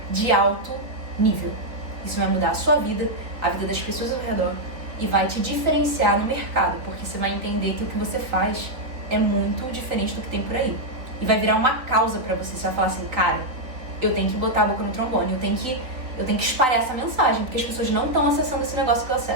de alto nível. Isso vai mudar a sua vida, a vida das pessoas ao redor, e vai te diferenciar no mercado, porque você vai entender que o que você faz é muito diferente do que tem por aí. E vai virar uma causa pra você. Você vai falar assim, cara, eu tenho que botar a boca no trombone, eu tenho que espalhar essa mensagem, porque as pessoas não estão acessando esse negócio que eu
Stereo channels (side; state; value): left; late; 3.7 ms